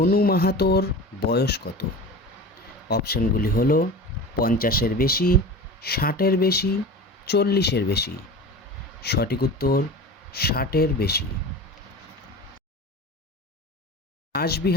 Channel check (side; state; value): both; normal; correlation 0.33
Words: মাহাতোর বয়স কত? অপশানগুলি হলো 50-এর বেশি, 60-এর বেশি, 40-এর বেশি। সঠিক উত্তর, 60-এর বেশি।